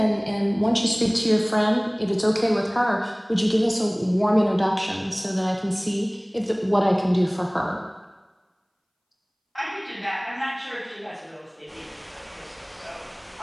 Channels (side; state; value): both; identical; correlation 1.00